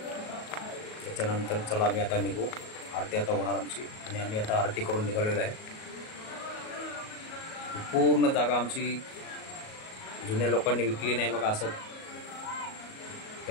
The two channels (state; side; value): late; right; 37 ms